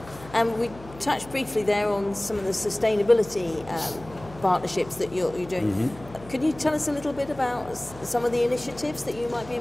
We touched briefly there on some of the sustainability partnerships that you're doing. Mm-hmm. Could you tell us a little bit about some of the initiatives that you might be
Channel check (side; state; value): left; noise; hum, 18 dB below the sound